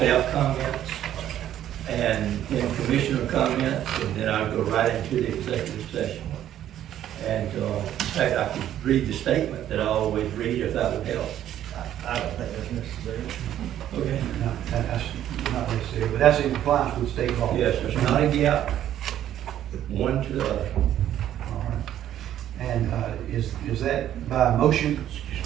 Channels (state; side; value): quieter; left; 11.5 dB